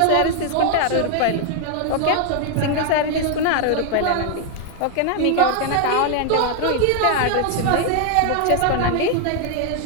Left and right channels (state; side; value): different; both; correlation 0.00